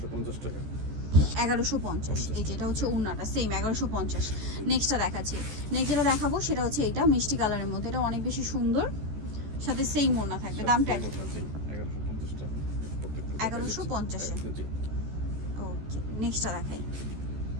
টাকা। 1150। এই যে এটা হচ্ছে ওড়নাটা সেম 1150। নেক্সটটা দেখাচ্ছি। নেক্সট যেটা দেখাবো সেটা হচ্ছে এটা মিষ্টি কালারের মধ্যে। এটা অনেক বেশি সুন্দর, সাথে সেম ওড়না থাকবে। দামটা 1150 টাকা। 1150 ওকে, নেক্সটটা দেখাই।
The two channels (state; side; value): late; left; 14 ms